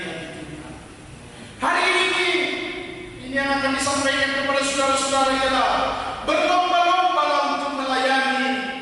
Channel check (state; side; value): identical; both; correlation 1.00